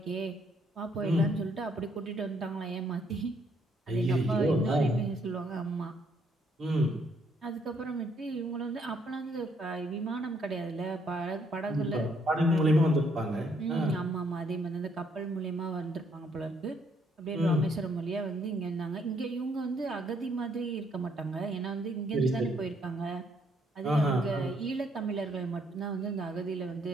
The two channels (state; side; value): normal; both; correlation 0.70